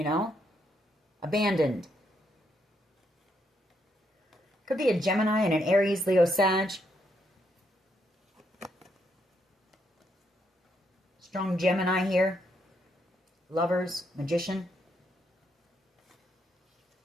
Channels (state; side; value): normal; both; correlation 0.77